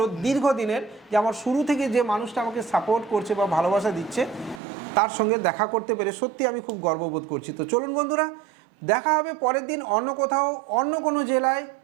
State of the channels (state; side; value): drops out; left; at 4.6 s